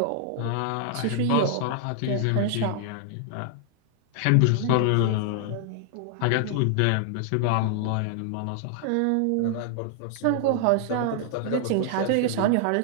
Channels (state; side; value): different; both; correlation 0.00